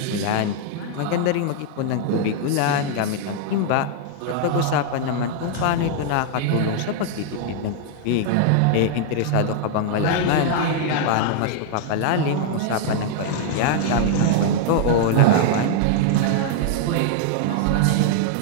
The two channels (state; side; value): different; both; correlation 0.00